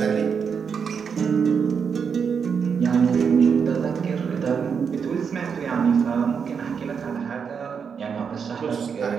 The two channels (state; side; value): quieter; left; 6.5 dB